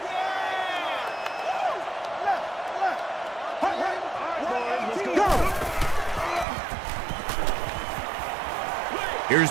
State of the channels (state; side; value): drops out; left; at 6.5 s